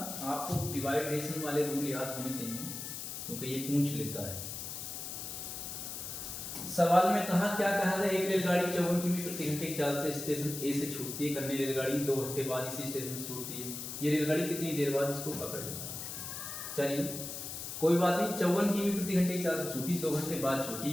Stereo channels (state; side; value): noise; left; hiss, 7 dB below the sound